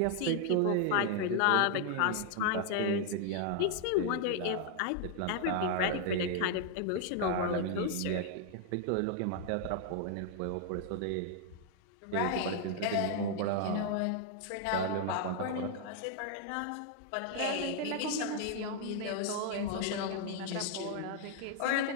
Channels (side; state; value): both; different; correlation 0.00